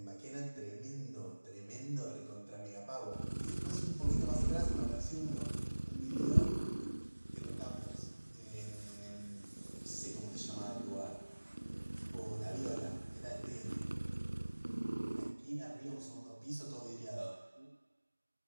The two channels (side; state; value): both; inverted; correlation -1.00